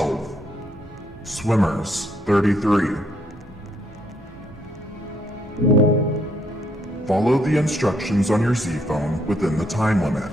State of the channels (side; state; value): both; normal; correlation 0.71